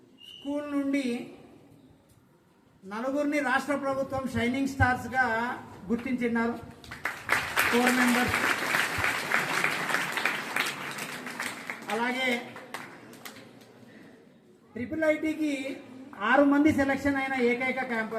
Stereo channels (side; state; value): both; identical; correlation 1.00